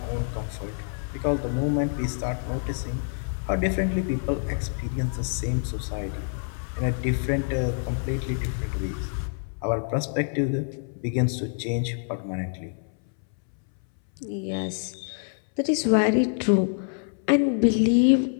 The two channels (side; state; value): right; silent; 61 dB below the other